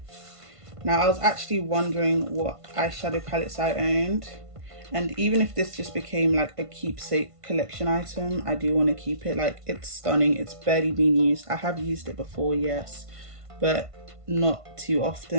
Now, I was actually wondering what eyeshadow palettes I owned, and even if this just became like a keepsake collection item, I do want to keep it. Like, it's stunning, it's barely been used. I have used it before, yes, but not too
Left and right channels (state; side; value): late; left; 1.5 ms